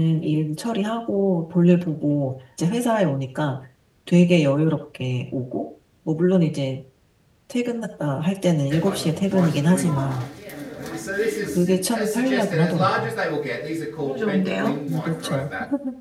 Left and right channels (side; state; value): both; identical; correlation 1.00